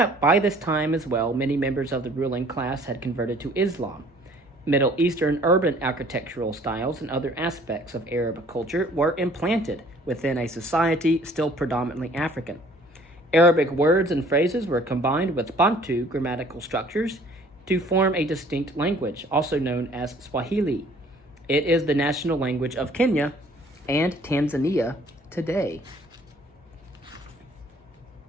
By this time as well, many members of the ruling class had converted to Islam. Middle Eastern urban architectural styles and other aspects of Arab culture were implanted within a society still predominantly African. Arabic words and phrases were combined with Bantu grammatical structures to form a distinct language, also known as Swahili. It is the national language of Kenya and Tanzania today.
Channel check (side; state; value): both; normal; correlation 0.55